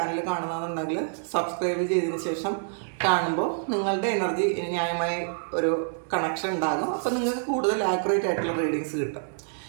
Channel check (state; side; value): silent; left; 60 dB below the other